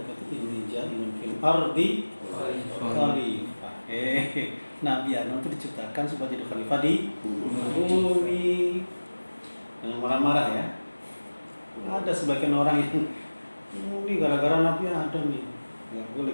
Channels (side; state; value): both; inverted; correlation -1.00